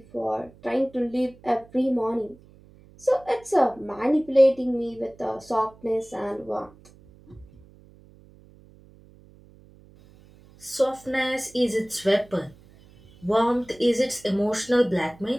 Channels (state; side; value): noise; right; hum, 25 dB below the sound